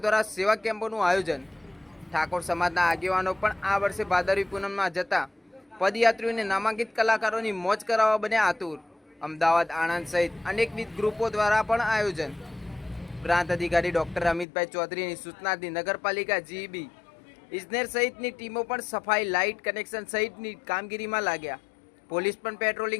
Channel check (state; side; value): drops out; right; at 14.5 s